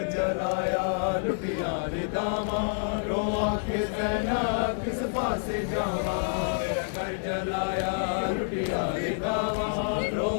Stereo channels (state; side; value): silent; right; digital silence